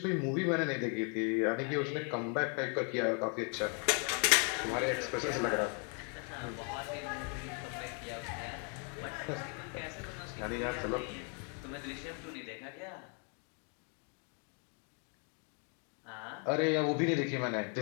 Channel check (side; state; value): right; quieter; 39.1 dB